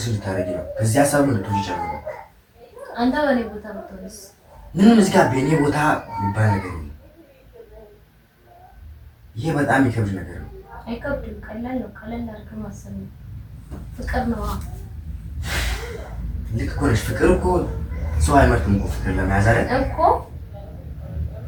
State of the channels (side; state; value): both; identical; correlation 1.00